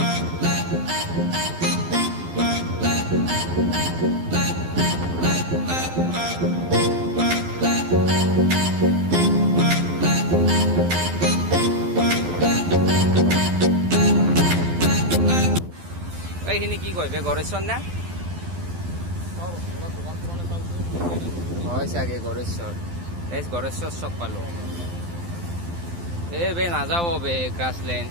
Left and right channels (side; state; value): left; late; 12 ms